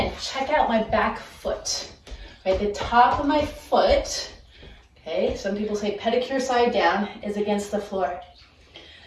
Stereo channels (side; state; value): both; identical; correlation 1.00